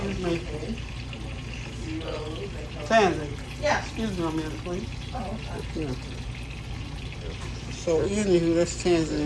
me. Tansy. Yeah. Excuse me a minute, please. Yeah. So anywho, that's Tansy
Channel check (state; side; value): identical; both; correlation 1.00